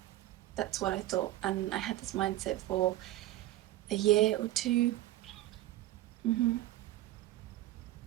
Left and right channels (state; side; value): quieter; left; 15.1 dB